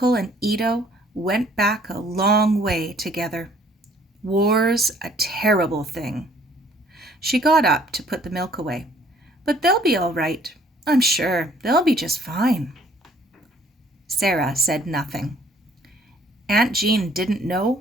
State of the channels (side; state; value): both; normal; correlation 0.59